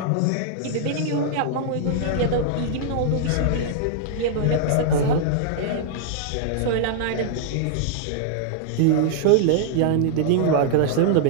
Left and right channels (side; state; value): both; different; correlation -0.01